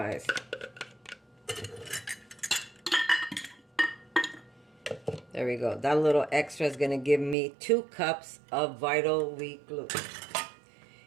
There we go. That little extra is going to give me 2 cups of Vital Wheat gluten.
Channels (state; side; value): drops out; left; at 7.4 s